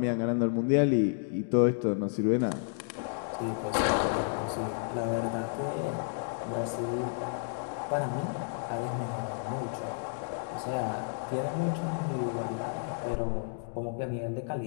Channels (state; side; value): silent; right; digital silence